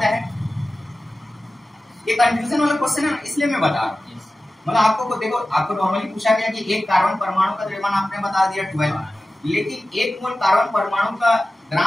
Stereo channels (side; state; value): both; normal; correlation 0.95